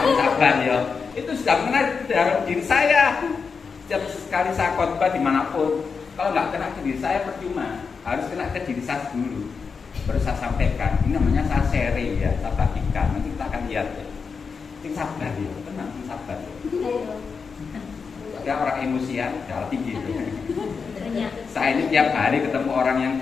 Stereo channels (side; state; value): right; quieter; 5.4 dB